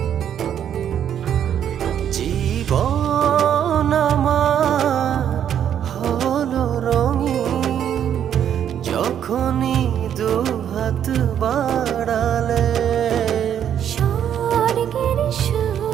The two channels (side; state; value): left; quieter; 9.5 dB